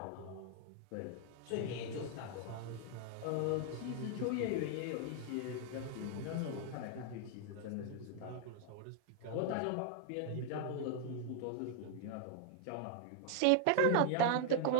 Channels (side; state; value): both; different; correlation 0.00